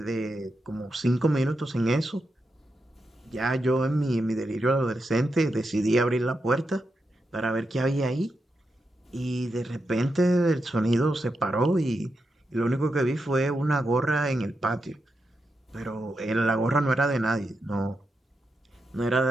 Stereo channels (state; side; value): normal; both; correlation 0.86